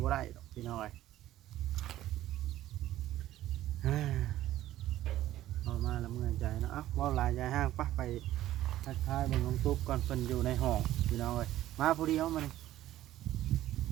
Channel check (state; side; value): quieter; left; 14.0 dB